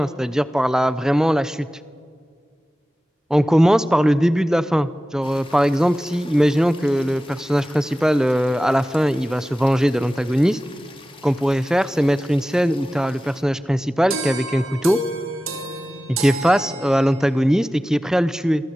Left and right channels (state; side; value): normal; both; correlation 0.95